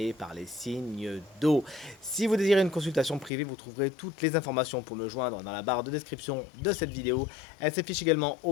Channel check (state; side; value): drops out; right; at 3.3 s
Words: par les signes d'eau. Si vous désirez une consultation privée, vous trouverez toutes les informations pour me joindre dans la barre de description de cette vidéo. Elle s'affiche également au